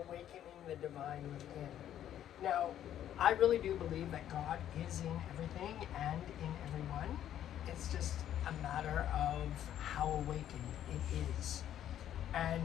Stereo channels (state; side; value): quieter; right; 11.0 dB